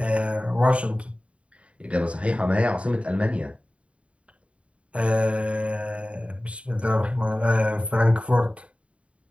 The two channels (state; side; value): late; left; 0.062 ms